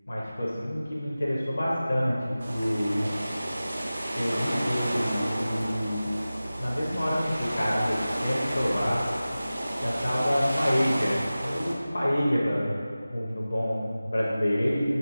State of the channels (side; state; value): both; inverted; correlation -0.97